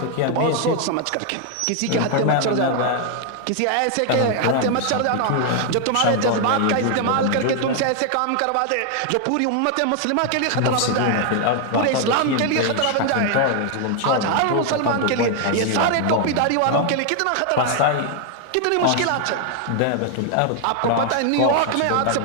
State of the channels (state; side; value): different; both; correlation 0.00